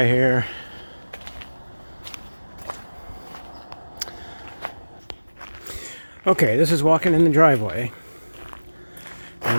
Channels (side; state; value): both; inverted; correlation -1.00